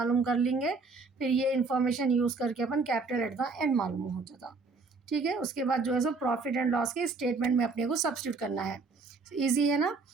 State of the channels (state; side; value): quieter; left; 4.1 dB